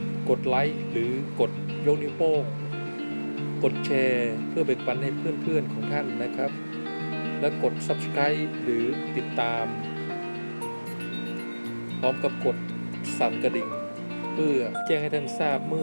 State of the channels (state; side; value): inverted; both; correlation -1.00